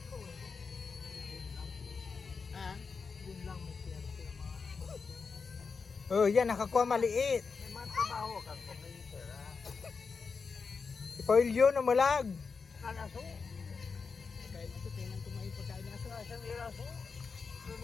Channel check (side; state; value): right; quieter; 5.1 dB